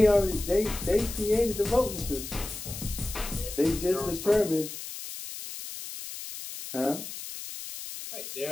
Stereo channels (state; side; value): noise; left; hiss, 9 dB below the sound